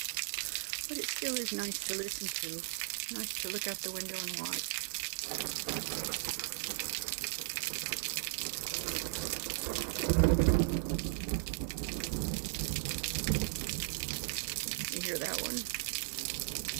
But it still is nice to listen to. Nice to look out the window and watch. You hear that one?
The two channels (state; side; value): silent; left; 53 dB below the other